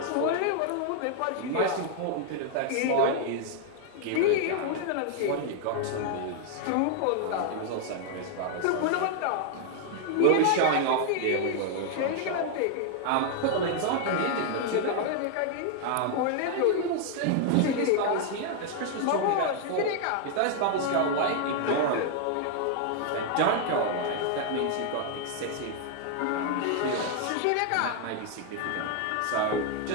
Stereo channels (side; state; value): both; different; correlation 0.00